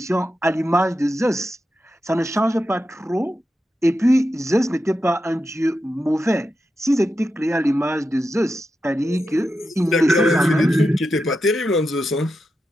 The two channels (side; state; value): both; normal; correlation 0.88